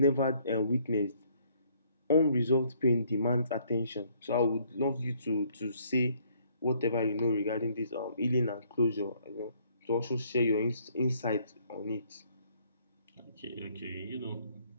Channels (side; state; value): both; inverted; correlation -0.65